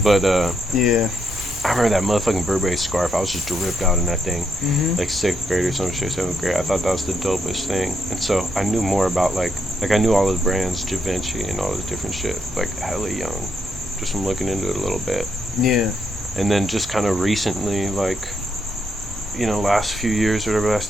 But yeah. I remember that motherfucking Burberry scarf. I was just dripped out in that thing, like 6th grade or some shit, 7th grade. I thought that was the dopest thing. And so I knew more about like I knew all the brands, Givenchy and all this different shit, like hella young. Just from looking into it a little bit. Yeah. And then just kind of recently, like, you know, last few years, or whatever, last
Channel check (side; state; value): both; normal; correlation 0.79